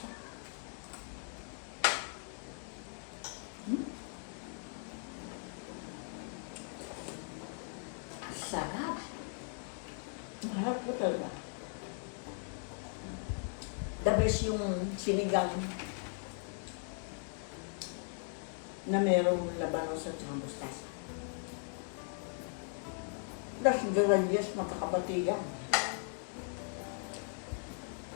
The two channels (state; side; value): silent; right; 52 dB below the other